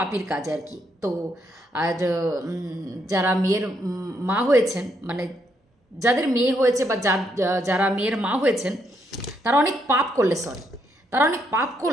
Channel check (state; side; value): normal; both; correlation 0.75